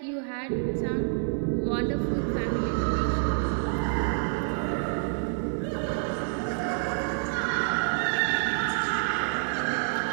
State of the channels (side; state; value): left; silent; 57 dB below the other